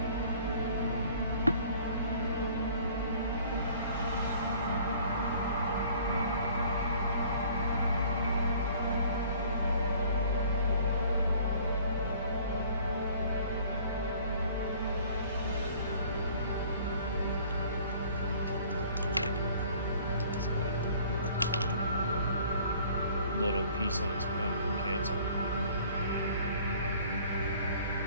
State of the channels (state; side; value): inverted; both; correlation -0.53